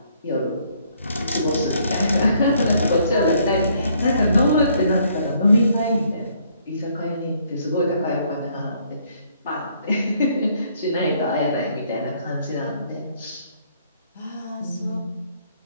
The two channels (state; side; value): inverted; both; correlation -0.66